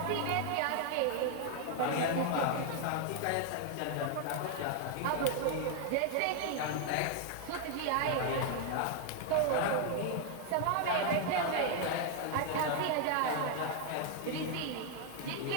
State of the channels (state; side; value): different; both; correlation 0.00